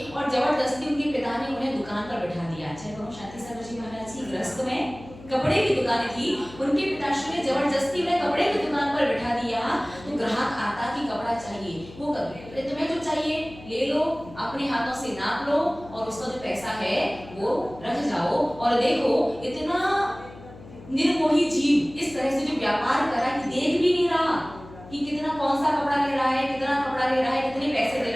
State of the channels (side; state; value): left; noise; hum, 18 dB below the sound